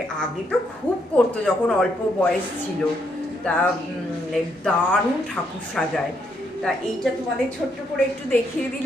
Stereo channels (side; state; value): both; normal; correlation 0.75